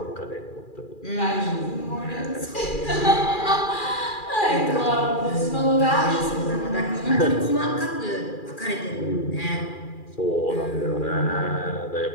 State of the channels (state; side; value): late; right; 2.4 ms